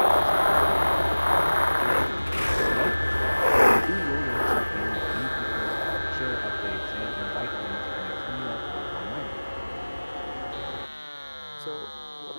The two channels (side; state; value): both; inverted; correlation -1.00